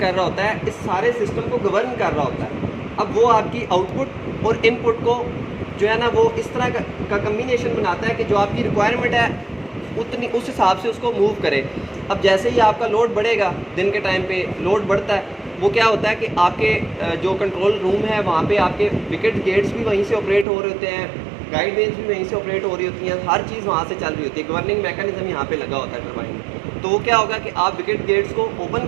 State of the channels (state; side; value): drops out; left; at 20.5 s